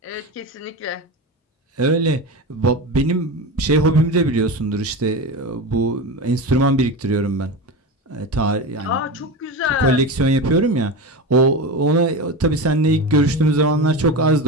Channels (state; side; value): normal; both; correlation 0.23